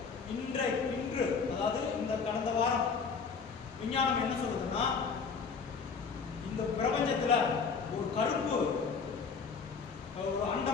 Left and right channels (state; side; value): quieter; right; 5.4 dB